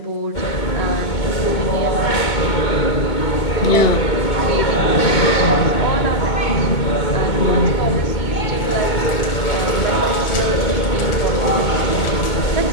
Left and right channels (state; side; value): late; right; 2.2 ms